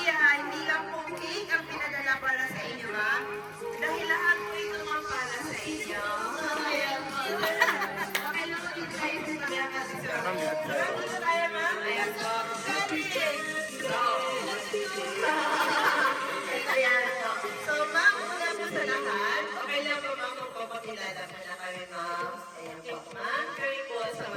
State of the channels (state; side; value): identical; both; correlation 1.00